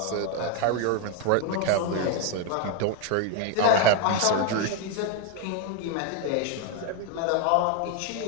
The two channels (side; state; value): both; different; correlation 0.01